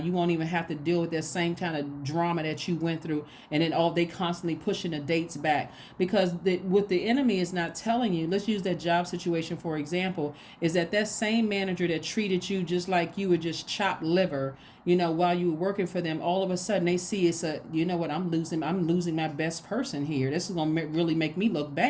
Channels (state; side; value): identical; both; correlation 1.00